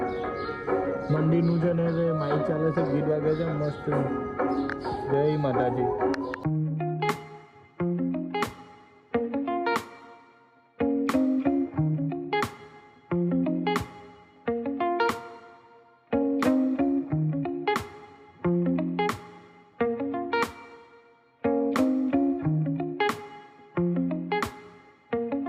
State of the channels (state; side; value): identical; both; correlation 1.00